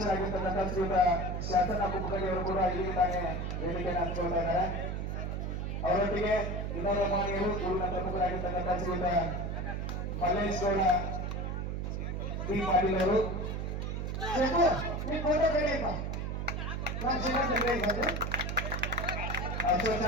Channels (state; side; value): noise; right; hum, 2 dB below the sound